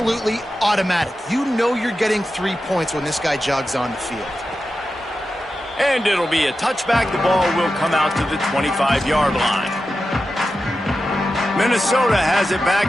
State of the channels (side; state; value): both; normal; correlation 0.92